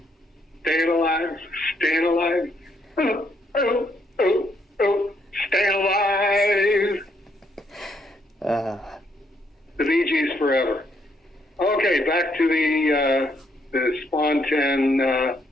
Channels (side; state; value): both; normal; correlation 0.73